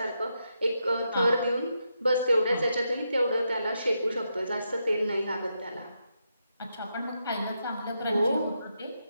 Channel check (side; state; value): both; inverted; correlation -0.83